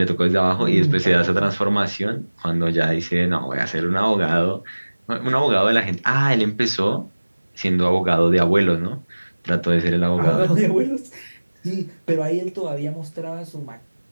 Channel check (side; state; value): both; inverted; correlation -1.00